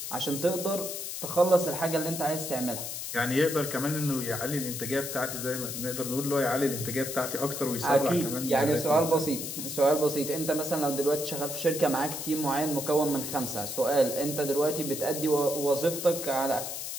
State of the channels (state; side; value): noise; left; hiss, 6 dB below the sound